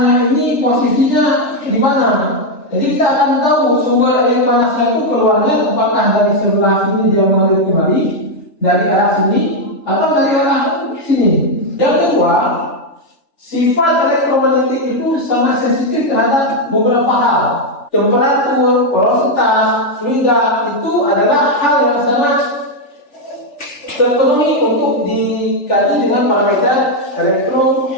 ini posisinya di mana. Jadi kita akan tahu sumber air panasnya itu keluarnya apakah dari sebelah sini dia mengalir kembali dari arah sini atau dari arah sini. Yang kedua, sifat elektromagnetik itu sangat sensitif terhadap beberapa hal. Temperatur, porositas, fluida itu adalah hal yang sangat terpenuhi untuk dikaji dengan parameter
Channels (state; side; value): late; right; 3.3 ms